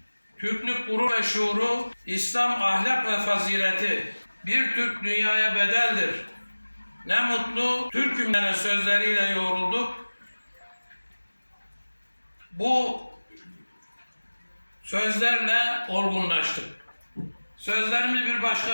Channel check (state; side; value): inverted; both; correlation -1.00